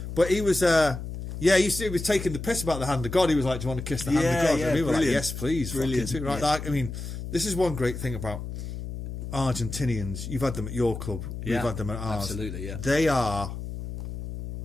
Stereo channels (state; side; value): noise; left; hum, 7 dB below the sound